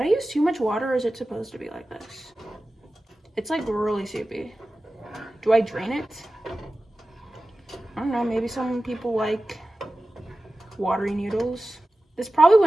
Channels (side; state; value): both; normal; correlation 0.95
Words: I use too much water, or is it supposed to be like this? It's like really soupy. Do I drain it? I don't know, maybe some people like watery noodles. This probably